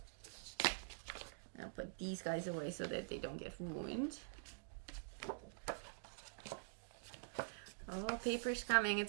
I'll put these guys away so that they don't get ruined. Oh, paper's coming.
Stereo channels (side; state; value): left; silent; digital silence